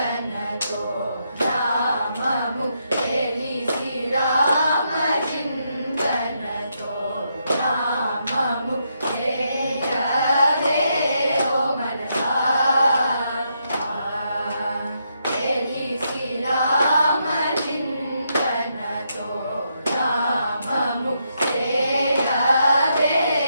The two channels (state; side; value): inverted; both; correlation -0.79